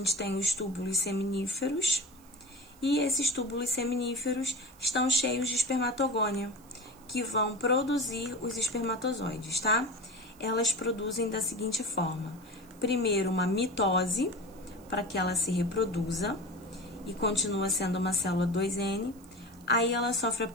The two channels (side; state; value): right; noise; hiss, 26 dB below the sound